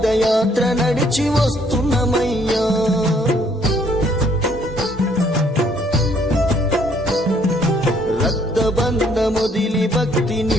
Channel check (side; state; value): both; normal; correlation 0.65